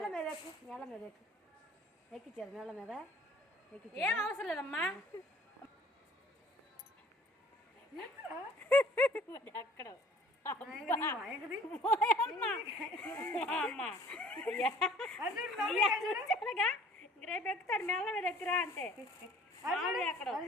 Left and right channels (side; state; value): both; normal; correlation 0.52